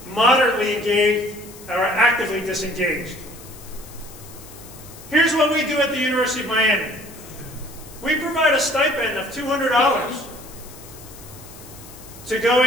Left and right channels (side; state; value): left; noise; hiss, 18 dB below the sound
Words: moderately engaged, or actively disengaged. Here's what we do at the University of Miami. We provide a stipend of $200 to go